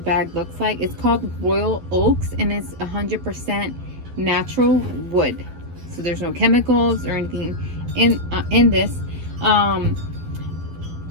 looks like. It's called Royal Oaks, and it's 100% natural wood, so there's no chemicals or anything in this.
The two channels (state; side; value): late; left; 12 ms